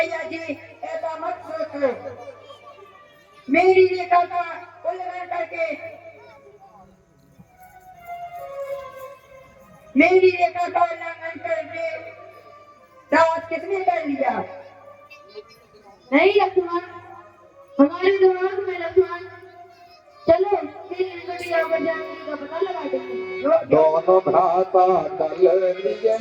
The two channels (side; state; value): both; identical; correlation 1.00